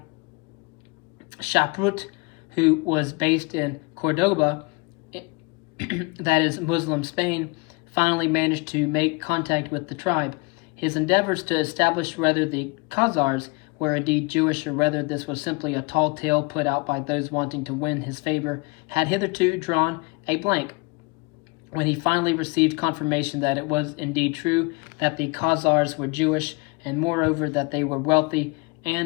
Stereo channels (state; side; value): quieter; right; 28.9 dB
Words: Shaprut, who was based in Cordoba, that is Muslim Spain, finally managed to make contact with the tribe. His endeavors to establish whether the Khazars were indeed Jewish, or whether this was simply a tall tale put out by those wanting to win his favor, had hitherto drawn a blank. When he finally received confirmation that it was indeed true that the Khazars were Jewish, and moreover that they were wealthy